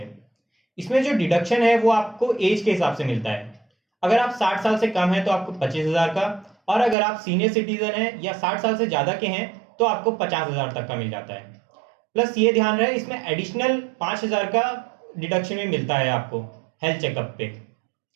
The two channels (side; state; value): left; drops out; at 7.0 s